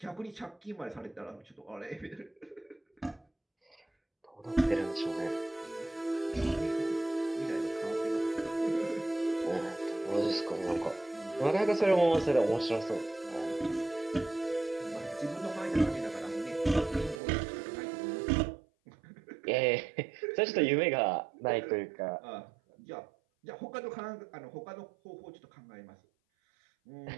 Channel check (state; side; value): drops out; left; at 17.2 s